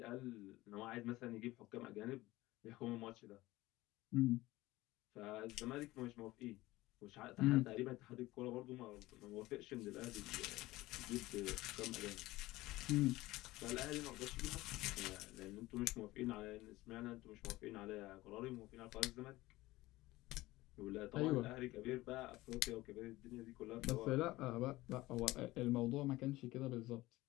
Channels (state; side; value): quieter; right; 18.5 dB